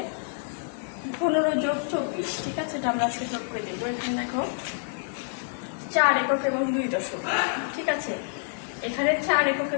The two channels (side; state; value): right; silent; digital silence